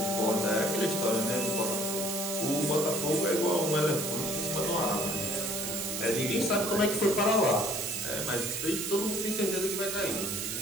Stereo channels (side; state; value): right; noise; hiss, 4 dB below the sound